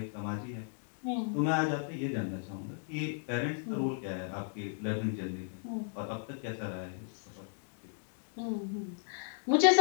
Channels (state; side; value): silent; right; digital silence